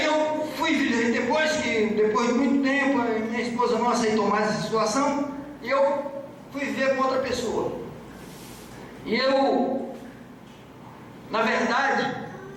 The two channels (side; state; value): both; identical; correlation 1.00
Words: eu fui, depois de muito tempo, minha esposa não aceitou mais essa situação, e eu fui viver com outra pessoa. E eu, na verdade,